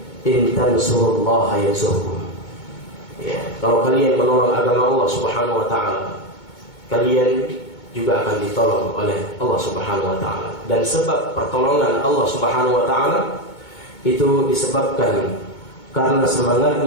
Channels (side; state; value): right; late; 2.2 ms